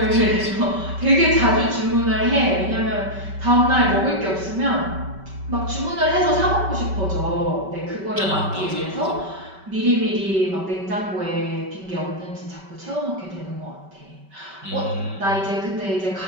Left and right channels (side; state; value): left; late; 5.2 ms